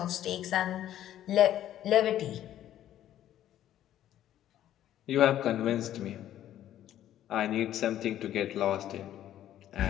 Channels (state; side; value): quieter; right; 12.0 dB